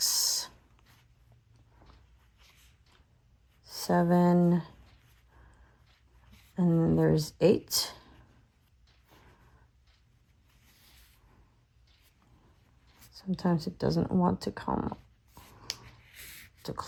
7, and then there's 8. Sometimes it doesn't want to come to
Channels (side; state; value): both; identical; correlation 1.00